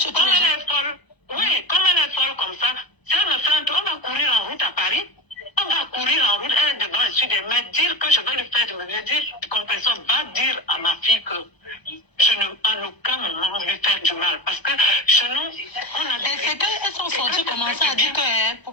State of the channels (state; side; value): late; right; 1.0 ms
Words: tous les gens. Oui, comme elle est folle comme ça, si elle me fait un tour, on va courir en route à Paris. On va courir en route, elle est devant le sud, mais dire que je vais lui faire du mal. Je dis, compresseur, va dire à ma fille que je ne, en aucun moment, lui faire du mal. Parce que chez nous, on a des... Et c'est qu'elles sont sorties commencer à dire que,